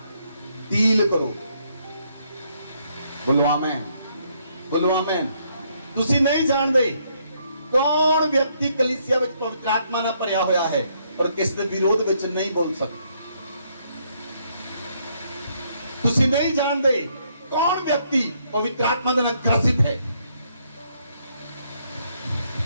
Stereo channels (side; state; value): both; inverted; correlation -0.72